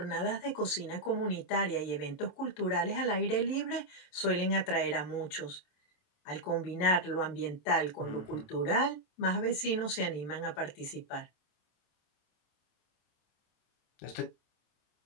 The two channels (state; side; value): late; right; 27 ms